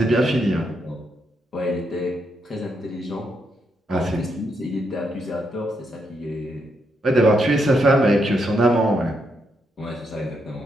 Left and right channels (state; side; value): normal; both; correlation 0.79